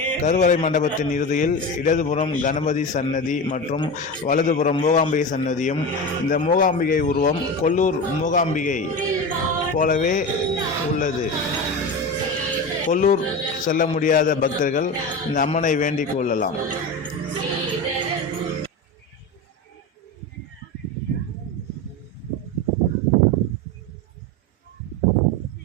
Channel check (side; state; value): both; normal; correlation 0.24